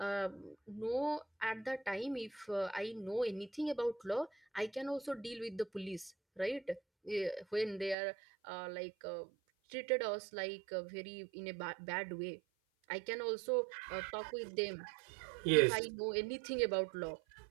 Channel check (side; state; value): left; drops out; at 8.0 s